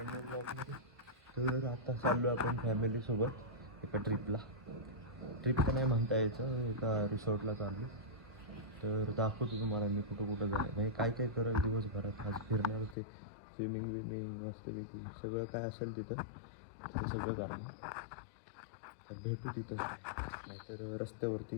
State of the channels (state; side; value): drops out; right; at 13.0 s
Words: न्यू ब्लॉगमध्ये. तर आता चाललो आपण फॅमिलीसोबत एका ट्रिपला. ट्रिप तर नाही म्हणता यायचं, एका रिसॉर्टला चाललो. तर दाखवतो तुम्हाला मी कुठं कुठं जाईल, म्हणजे काय काय करेल दिवसभरात. आज फिरणार होते, स्विमिंग विमिंग मस्तपैकी सगळं काय असेल तिथं ते सगळं करणार. तर भेटू तिथं, नाहीतर रस्त्यावरती